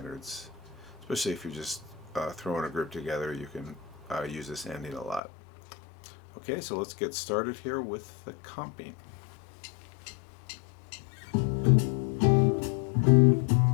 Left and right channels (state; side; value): drops out; right; at 5.2 s